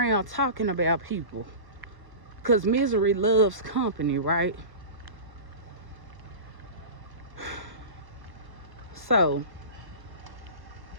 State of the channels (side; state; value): left; late; 1.1 ms